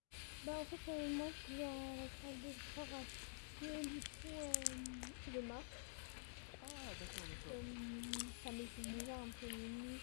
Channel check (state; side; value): silent; right; digital silence